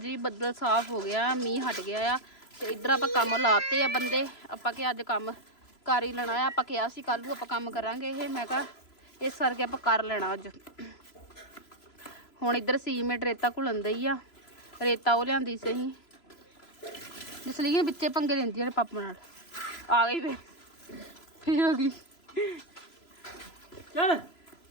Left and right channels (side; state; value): right; late; 3.0 ms